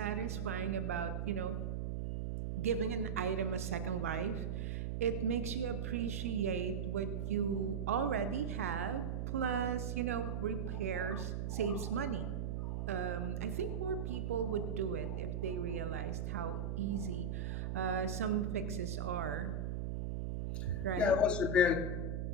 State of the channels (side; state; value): right; noise; hum, 1 dB below the sound